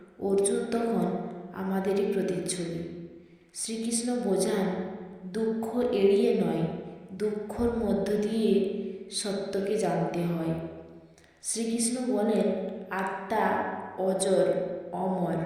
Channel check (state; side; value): identical; both; correlation 1.00